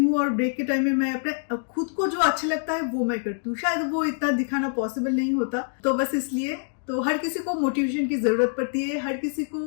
और ब्रेक के टाइम में मैं अपने खुद को जो अच्छा लगता है वो मैं करती हूँ। शायद वो इतना दिखाना पॉसिबल नहीं होता, तो बस इसलिए। तो हर किसी को मोटिवेशन की जरूरत पड़ती है, हर किसी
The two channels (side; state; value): right; silent; digital silence